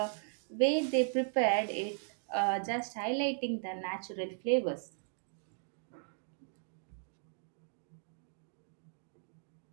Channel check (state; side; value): silent; left; digital silence